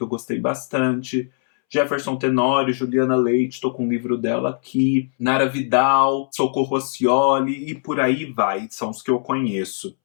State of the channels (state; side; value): silent; right; 65 dB below the other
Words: eu gostei bastante. Jefferson Tenório, Juliana Leite, estou com um livro dela aqui. Nara Vidal, Socorro Oscioli e por aí vai, são os que eu conheço.